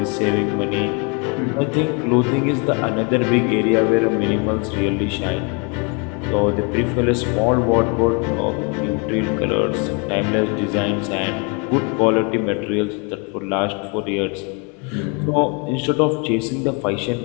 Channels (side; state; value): right; quieter; 33.7 dB